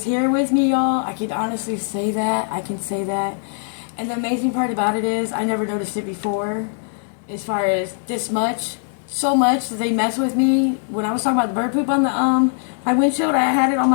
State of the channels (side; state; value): right; silent; 65 dB below the other